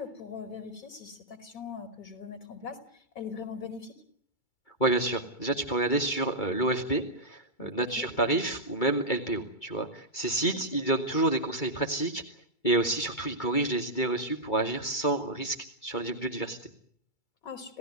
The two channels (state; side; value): late; right; 2.3 ms